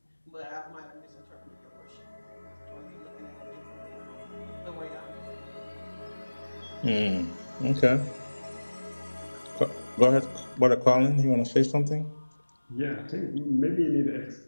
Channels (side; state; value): both; inverted; correlation -1.00